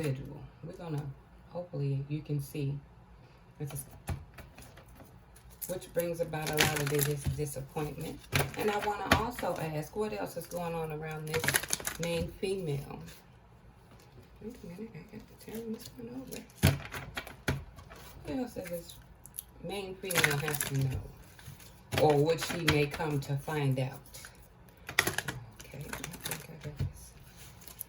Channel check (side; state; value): both; identical; correlation 1.00